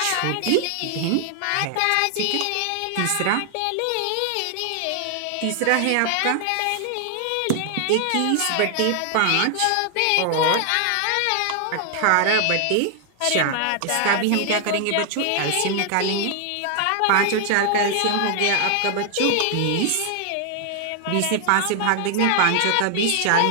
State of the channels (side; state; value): both; different; correlation 0.00